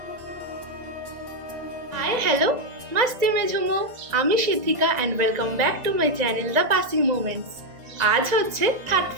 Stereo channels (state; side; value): late; left; 1.9 ms